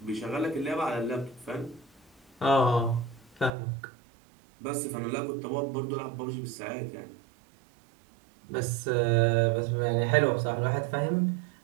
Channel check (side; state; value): left; drops out; at 3.5 s